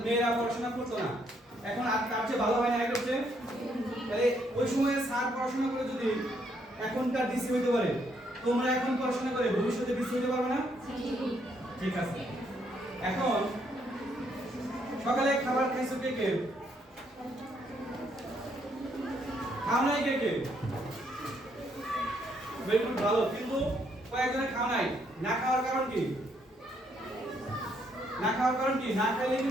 মেয়েরা পড়াশোনা করতো না এখন আর তার চেয়ে ভালো হয় না এটা হচ্ছে তাহলে ওই সময়ে স্যার পড়াশোনা করে যদি এখনকার ডিসি হইতে পারে তোমরা এখন পড়াশোনা করে ভবিষ্যতে ডিসি হইতে পারবে না ঠিক আছে এখন সকালে খাবার খাইছো কে কে খাও নাই কে কে বেগুন ভালো কিন্তু কয়েকজনের খাওয়া নাই না খাওয়ার কারণ কি না খাওয়ার কারণ কি না খেলে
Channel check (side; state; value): both; normal; correlation 0.72